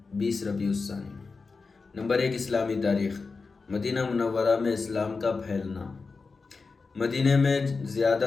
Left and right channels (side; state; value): right; quieter; 4.4 dB